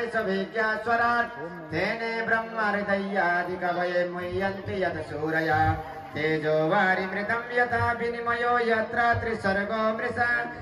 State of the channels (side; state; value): both; identical; correlation 1.00